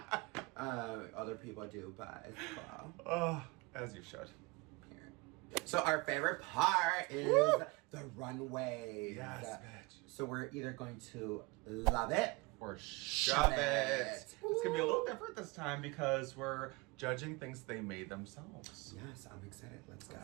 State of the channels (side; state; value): left; quieter; 25.3 dB